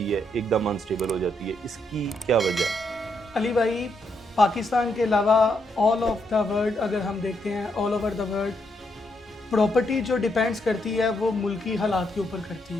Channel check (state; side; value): normal; both; correlation 0.77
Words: है, एकदम अनस्टेबल हो जाती है, इसकी क्या वजह है? अली भाई, पाकिस्तान के अलावा ऑल ऑफ द वर्ल्ड अगर हम देखते हैं, all over the world property जो डिपेंड्स करती है वो मुल्की हालात के ऊपर करती